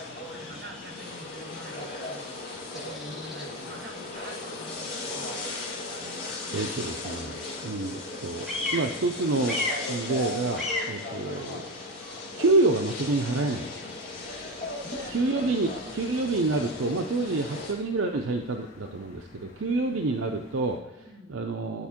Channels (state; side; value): normal; both; correlation 0.18